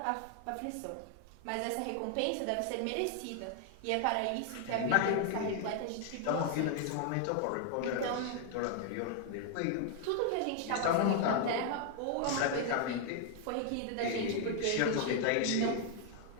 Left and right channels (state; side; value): different; both; correlation 0.00